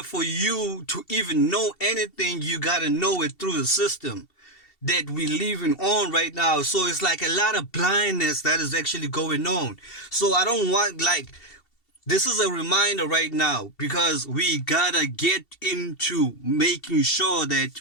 for you to even know anything, you gotta know it through the system that we living on right now. So it's like a lot of blindness that is actually going on. So I don't want, like, this is a reminder right now, because we gotta get into making sure that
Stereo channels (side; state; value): right; late; 2.7 ms